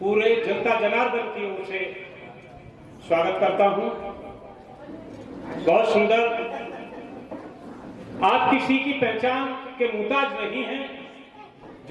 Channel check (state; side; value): identical; both; correlation 1.00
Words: जनता जनार्दन की ओर से स्वागत करता हूं। बहुत सुंदर, आप किसी की पहचान के मुहताज नहीं हैं।